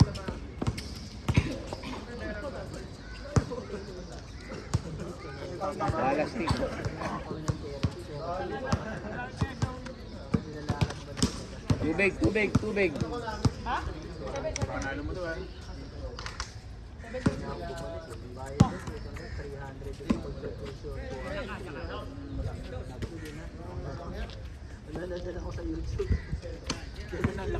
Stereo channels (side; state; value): both; identical; correlation 1.00